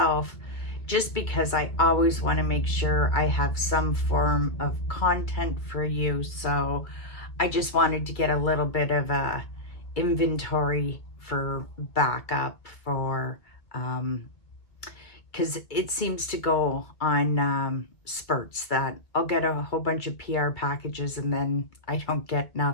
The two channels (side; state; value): right; late; 2.4 ms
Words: just because I always want to make sure I have some form of content for you. So I just wanted to get a little bit of a inventory for backup for, because it seems to go on spurts that I'll get a whole bunch of PR packages and then I don't get